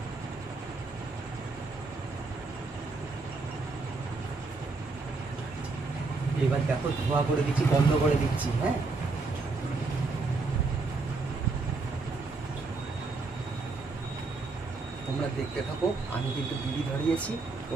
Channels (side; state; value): left; quieter; 3.8 dB